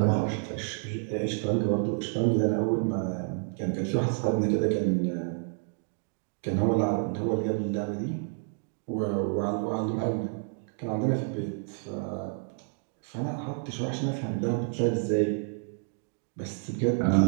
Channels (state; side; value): silent; left; 57 dB below the other